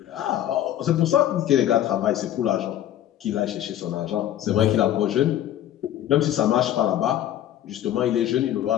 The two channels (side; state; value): right; quieter; 11.9 dB